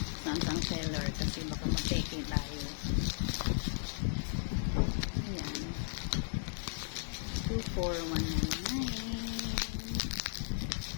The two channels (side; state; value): right; silent; digital silence